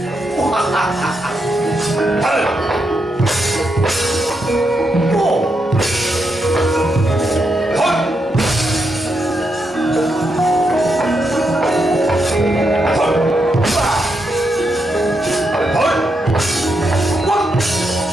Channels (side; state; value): both; normal; correlation 0.82